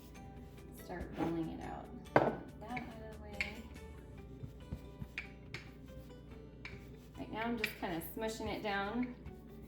start rolling it out. Get that out of the way. Right now I'm just kind of smushing it down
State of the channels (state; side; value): identical; both; correlation 1.00